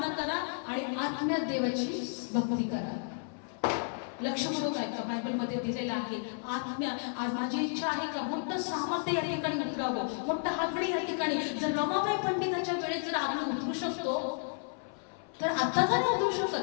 करा आणि आत्म्यात देवाची भक्ती करा. लक्ष करून ऐका, बायबल मध्ये दिलेलं आहे आत्म्या. आज माझी इच्छा आहे का मोठं सामर्थ्य या ठिकाणी उतरावं, मोठं आगडी या ठिकाणी. जर रमाबाई पंडिताच्या वेळेस जर आगडी उतरू शकतो तर आता का नाही उतरू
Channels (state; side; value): silent; right; 56 dB below the other